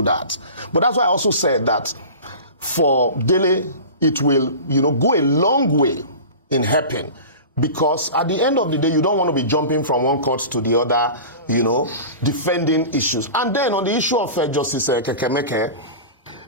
that. But that's why I also said that for Dele, it will, you know, go a long way in helping. Because at the end of the day, you don't want to be jumping from one court to the other, you know, defending issues. And then on the issue of Justice Kekemeke,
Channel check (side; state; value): both; inverted; correlation -0.34